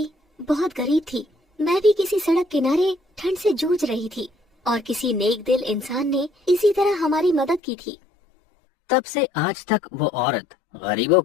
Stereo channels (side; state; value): right; drops out; at 7.6 s